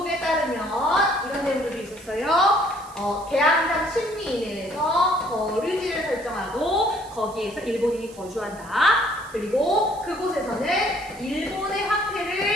따르면 이런 내용들도 있었어요. 개항장 심리인에서 거류지를 설정하고 거기에서 일본인이 거주한다. 그리고 그곳에서는 일본의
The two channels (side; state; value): right; noise; hiss, 22 dB below the sound